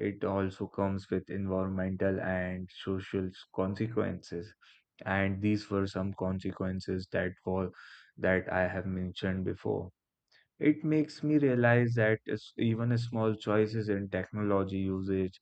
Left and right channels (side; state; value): both; identical; correlation 1.00